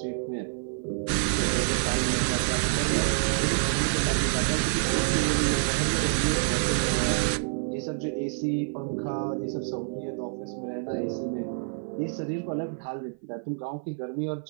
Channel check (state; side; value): silent; left; 55 dB below the other